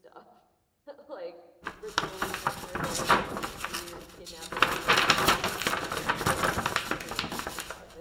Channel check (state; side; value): identical; both; correlation 1.00